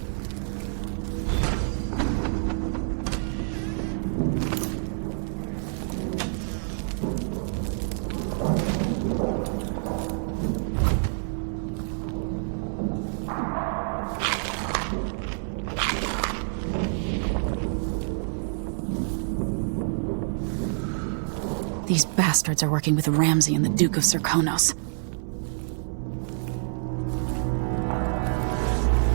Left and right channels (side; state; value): left; silent; digital silence